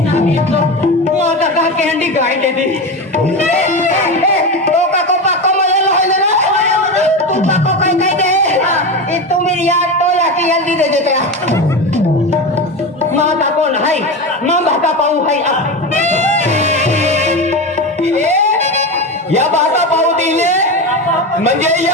माता का कैंडी गाय दे दी तो का को पाको मले होले ना तू पाको कहीं कहीं दे ये तू मेरी याद तो लाके जल्दी दे देते माता कौन है मां बाता पाऊ है या बाता पाऊ दिले म्हणजे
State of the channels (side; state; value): both; normal; correlation 0.21